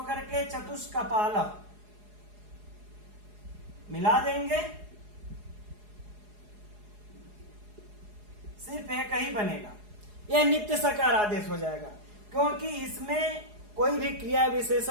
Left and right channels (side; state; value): left; late; 4.8 ms